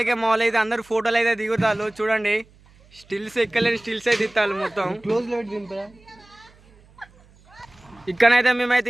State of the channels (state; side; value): noise; right; hum, 28 dB below the sound